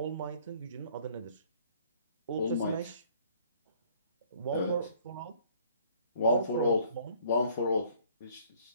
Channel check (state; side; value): inverted; both; correlation -0.58